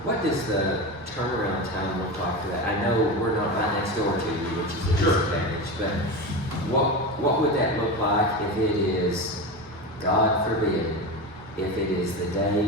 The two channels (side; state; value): both; normal; correlation 0.23